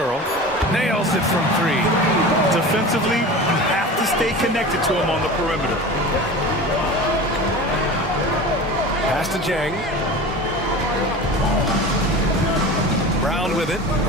Nails it from 3. Defensively, you have to stay connected to him on the perimeter. Pass to Jang. Brown with it.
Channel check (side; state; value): both; normal; correlation 0.33